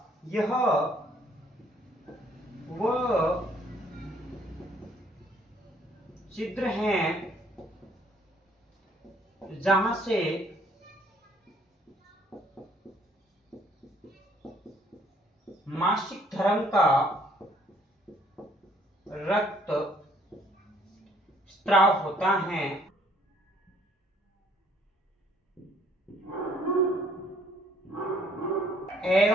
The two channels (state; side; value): normal; both; correlation 0.62